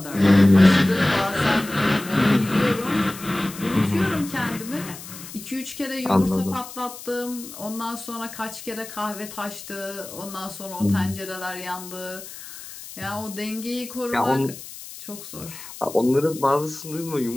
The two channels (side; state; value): left; noise; hiss, 14 dB below the sound